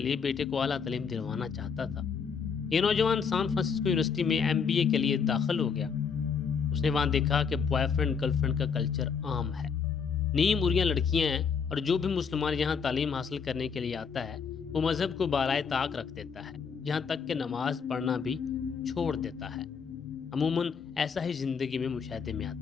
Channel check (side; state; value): right; quieter; 6.1 dB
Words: بیٹے کو اعلیٰ تعلیم دلوانا چاہتا تھا۔ یہ نوجوان سان فرانسسکو یونیورسٹی میں MBA کے لیے داخل ہو گیا۔ اس نے وہاں دیکھا کہ بوائے فرینڈ گرل فرینڈ کا کلچر عام ہے، نیم اریاں لڑکیاں ہیں، اور جو بھی مسلمان یہاں تعلیم حاصل کرنے کے لیے آتا ہے وہ مذہب کو بالائے طاق رکھ دیتا ہے، یہاں تک کہ نماز پڑھنا بھی چھوڑ دیتا ہے۔ عموماً ایسا ہی زندگی میں مشاہدے میں